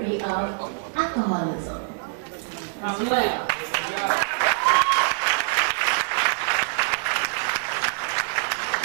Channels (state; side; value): silent; left; 62 dB below the other